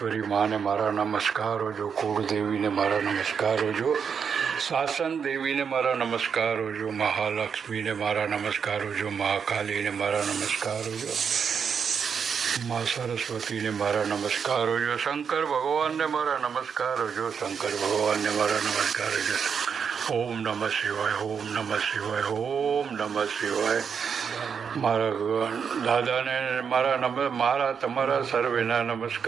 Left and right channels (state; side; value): quieter; left; 6.7 dB